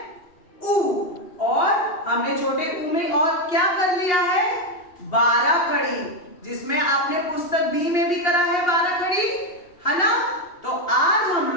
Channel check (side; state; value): right; late; 2.8 ms